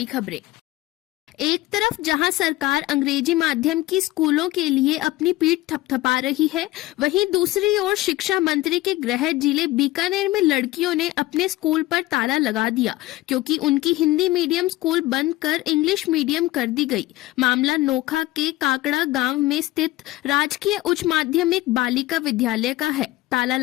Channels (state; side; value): quieter; right; 17.8 dB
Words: खबरें। एक तरफ जहां सरकार अंग्रेजी माध्यम की स्कूलों के लिए अपनी पीठ थपथपा रही है, वहीं दूसरी ओर शिक्षा मंत्री के गृह जिले बीकानेर में लड़कियों ने अपने स्कूल पर ताला लगा दिया क्योंकि उनकी हिंदी मीडियम स्कूल बंद कर इंग्लिश मीडियम कर दी गई। मामला नोखा के काकड़ा गांव में स्थित राजकीय उच्च माध्यमिक बालिका विद्यालय का है। ताला